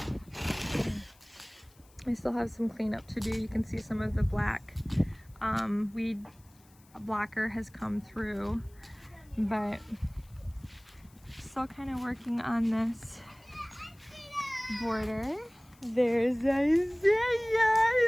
I still have some cleanup to do. You can see some of the black weed blocker has come through, but still kind of working on this border. There's Isaiah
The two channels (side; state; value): left; noise; hiss, 29 dB below the sound